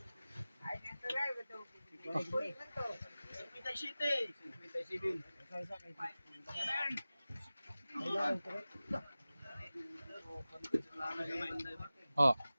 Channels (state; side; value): inverted; both; correlation -0.97